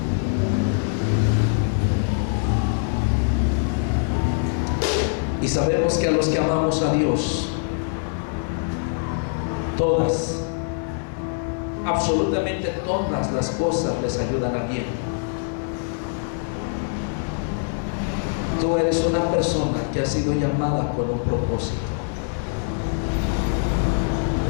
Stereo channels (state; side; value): silent; right; digital silence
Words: Y sabemos que a los que amamos a Dios, todas, absolutamente todas las cosas les ayudan a bien. Tú eres una persona que ha sido llamada con un propósito.